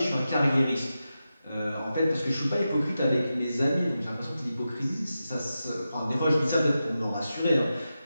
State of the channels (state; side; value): inverted; both; correlation -0.91